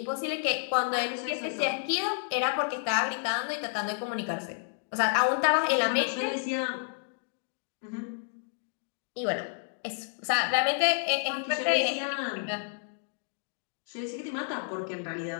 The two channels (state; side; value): silent; right; digital silence